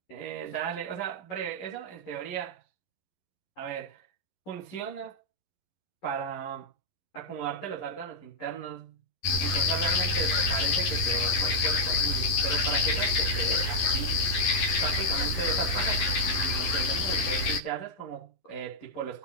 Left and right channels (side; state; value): right; late; 11 ms